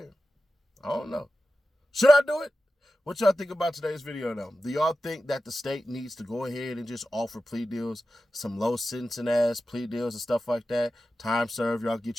I don't know. Should I do it? What y'all think about today's video though? Do y'all think that the state needs to go ahead and just offer plea deals, some low sentencing ass plea deals and stuff like that? Time served, y'all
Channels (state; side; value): normal; both; correlation 0.93